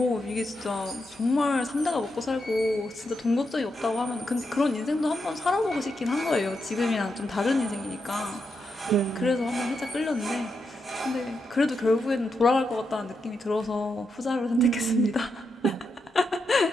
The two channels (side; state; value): both; normal; correlation 0.84